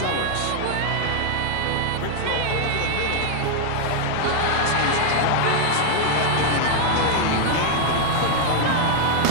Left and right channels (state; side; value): different; both; correlation 0.00